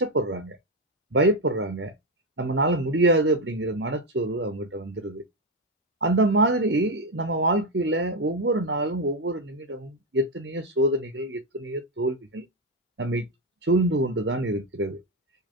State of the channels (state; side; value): normal; both; correlation 0.08